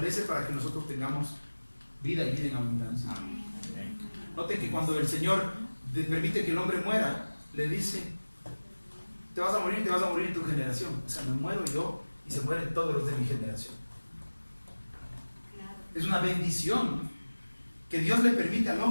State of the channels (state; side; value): inverted; both; correlation -1.00